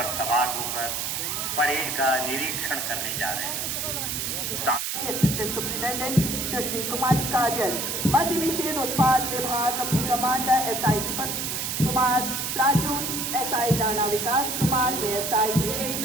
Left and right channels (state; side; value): noise; right; hiss, 2 dB below the sound